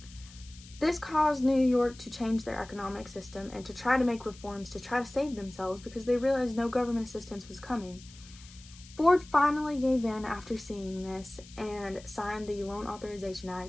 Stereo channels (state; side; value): noise; left; hiss, 21 dB below the sound